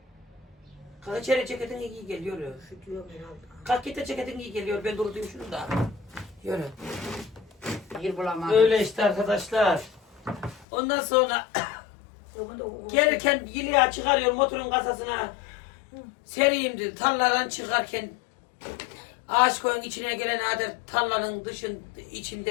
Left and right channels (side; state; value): right; drops out; at 10.7 s